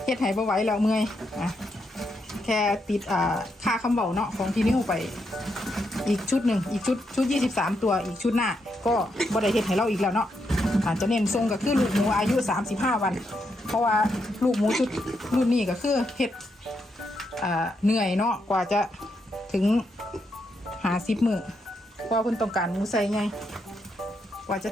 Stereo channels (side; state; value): both; normal; correlation 0.81